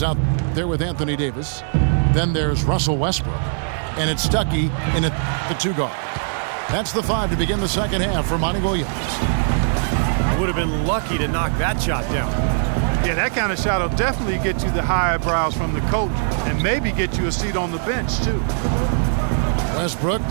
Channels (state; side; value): silent; left; digital silence